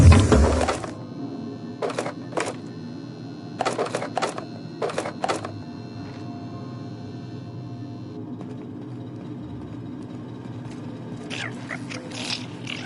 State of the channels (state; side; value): identical; both; correlation 1.00